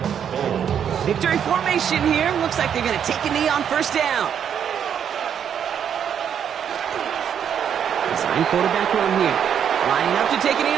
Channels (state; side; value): quieter; left; 8.5 dB